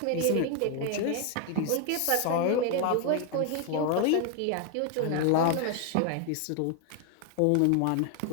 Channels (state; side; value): different; both; correlation 0.01